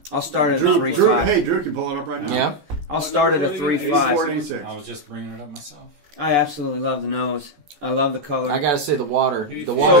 I'll start at a 3.5. Hey, Drew can pull it up right now. Yeah. I'll start at a 3.5. I was just bringing it up myself. I absolutely love the nose. I love the color. I gotta say the water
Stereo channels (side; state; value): left; late; 14 ms